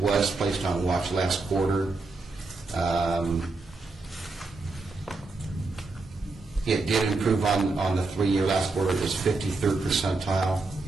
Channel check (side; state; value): left; quieter; 3.6 dB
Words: was placed on watch last quarter. It did improve on the 3-year. Last quarter. It was 53rd percentile.